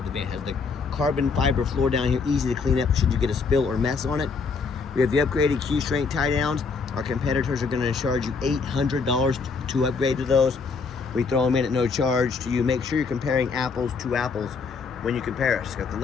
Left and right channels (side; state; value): right; quieter; 4.9 dB